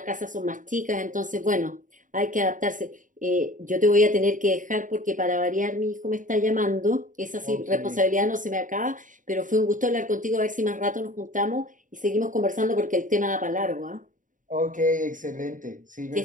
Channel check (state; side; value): late; left; 0.38 ms